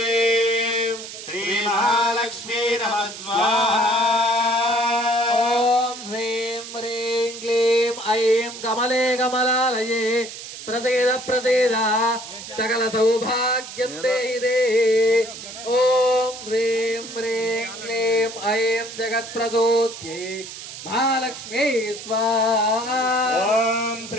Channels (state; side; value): noise; right; hiss, 12 dB below the sound